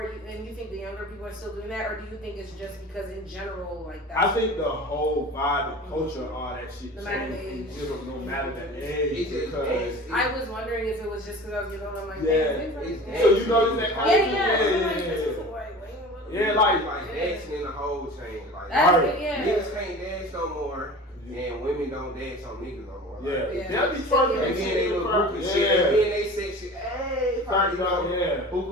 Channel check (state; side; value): normal; both; correlation 0.39